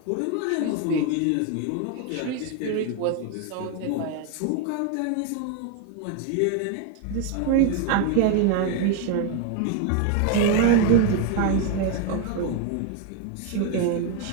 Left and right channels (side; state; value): both; different; correlation 0.02